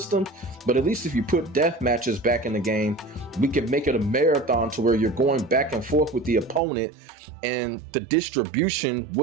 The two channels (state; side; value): drops out; left; at 6.6 s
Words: but at least if you put death matches back in the game, we can make it a marathon to where you're going back and forth with the opponent, and the distribution